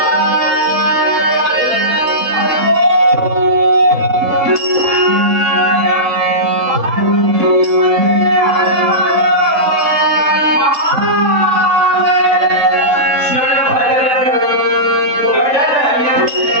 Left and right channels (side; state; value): left; late; 3.7 ms